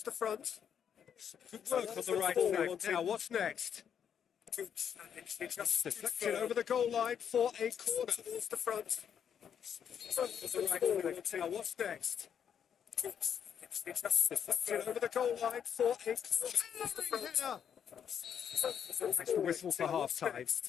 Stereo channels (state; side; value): quieter; right; 8.3 dB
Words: the front. Good work on the right flank. Now, what's next? Good challenge. He just deflected over the goal line for a corner. Towards the front. The right flank. Now, what's next? Good challenge. He just deflected over the goal line for a corner. That's the whistle for half-time.